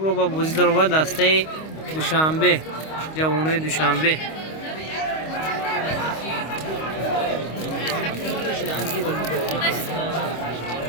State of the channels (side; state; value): right; late; 25 ms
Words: رو با بازی در با دسته دوشنبه، جوانای دوشنبه.